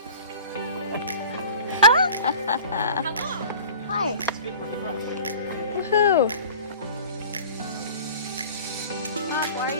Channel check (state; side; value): inverted; both; correlation -0.43